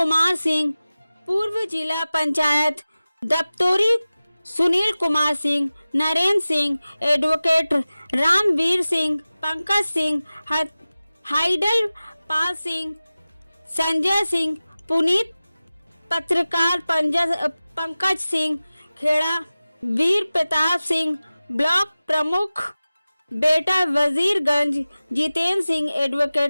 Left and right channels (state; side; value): inverted; both; correlation -0.96